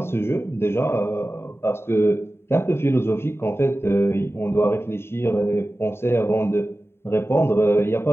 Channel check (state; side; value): late; right; 0.12 ms